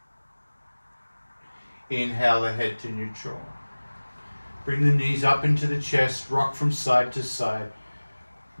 Inhale the head to neutral. Bring the knees up into the chest, rock from side to side,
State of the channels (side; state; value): both; inverted; correlation -1.00